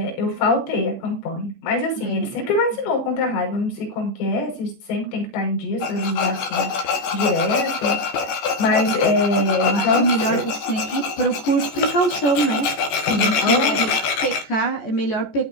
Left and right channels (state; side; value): late; right; 14 ms